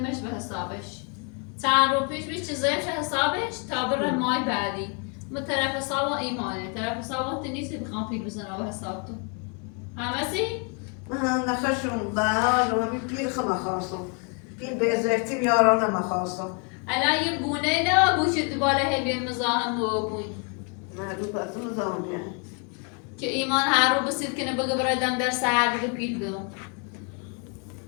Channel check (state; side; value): quieter; right; 37.7 dB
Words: به حسابش چند رو پیش بیش چیزایش حسابش تا بره مای بعدی ما طرف حساب ایمانه طرف حساب نیستی بخوام پیل بزنم به حساب تو همه سی؟ من نخشم به حال همین پیل خم خواستم پیل به ازرتی بیارانم خواستم الان یه گونه نه بوشت بالا هبی مزاحم و بوی نه رو پسون زمانیه که ایمان هر رو بسید کنه بگه برادم در سهر بگه پیل بدم